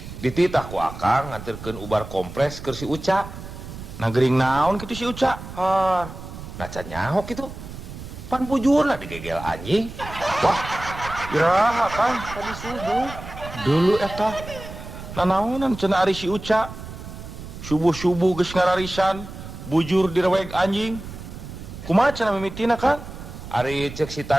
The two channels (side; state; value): right; noise; rumble, 12 dB below the sound